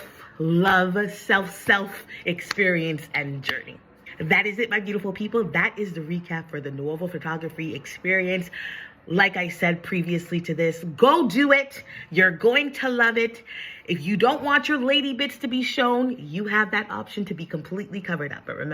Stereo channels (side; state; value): both; identical; correlation 1.00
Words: self experience and journey. That is it, my beautiful people. That is the recap for the Nuovo Photography experience. Like I said previously to this, go do it. You're going to love it. If you don't want your lady bits to be shown, you have that option to be completely covered up. But